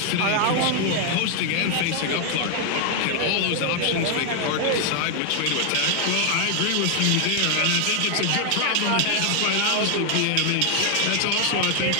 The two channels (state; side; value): different; both; correlation 0.00